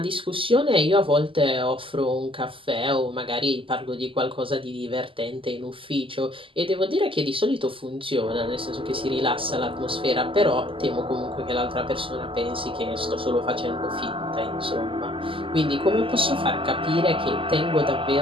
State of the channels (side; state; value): left; late; 0.25 ms